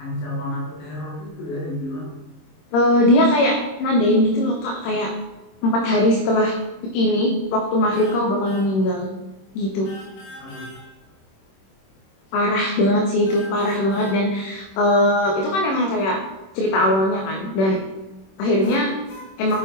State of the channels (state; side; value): late; right; 26 ms